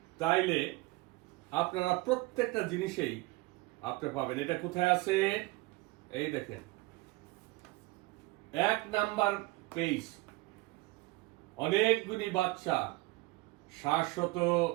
তাইলে আপনারা প্রত্যেকটা জিনিসেই আপনি পাবেন। এটা কোথায় আছে? এই দেখেন, 1 নাম্বার পেজ। অনেকগুলি বাচ্চা, শাশ্বত,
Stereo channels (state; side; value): quieter; left; 22.0 dB